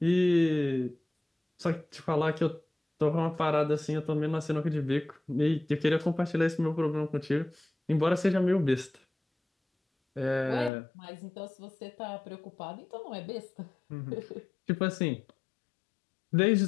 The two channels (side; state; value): right; drops out; at 10.7 s